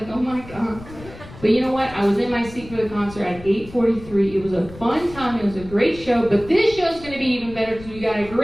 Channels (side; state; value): left; noise; rumble, 17 dB below the sound